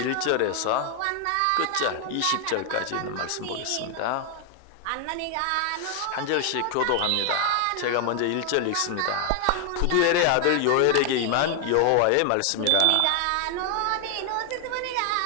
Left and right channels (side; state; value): both; different; correlation 0.00